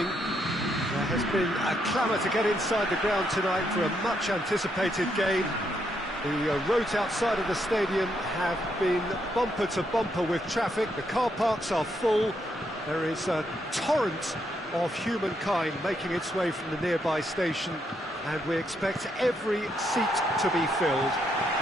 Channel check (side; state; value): both; normal; correlation 0.77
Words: There has been a clamour to get inside the ground tonight for a much anticipated game. The roads outside of the stadium have been bumper to bumper with traffic. The car parks are full. There is a torrent of humankind making its way from the nearby station, and we expect every seat to be filled.